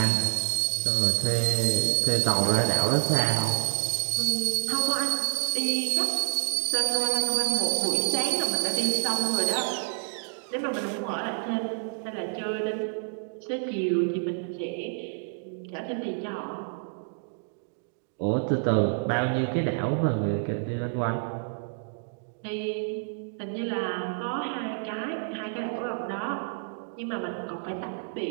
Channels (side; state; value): left; silent; digital silence